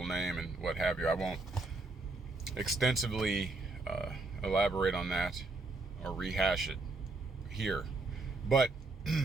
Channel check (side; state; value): left; quieter; 3.2 dB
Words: name and what have you. I won't extensively elaborate on that or rehash it here. But